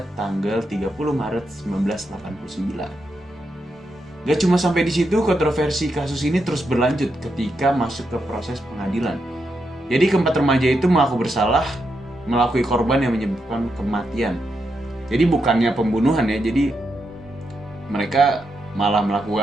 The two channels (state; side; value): normal; both; correlation 0.84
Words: tanggal 30 Maret 1989. Gak cuma sampai di situ, kontroversi kasus ini terus berlanjut ketika masuk ke proses pengadilan. Jadi keempat remaja itu mengaku bersalah melakui korban yang menyebabkan kematian. Jadi bukannya pembunuhan ya, jadi mereka malah